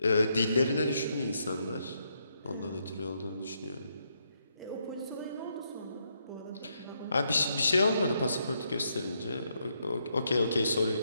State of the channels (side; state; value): both; inverted; correlation -0.77